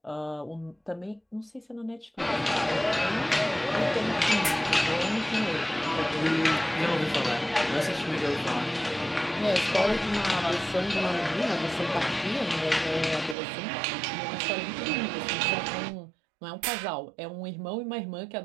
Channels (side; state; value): left; drops out; at 13.4 s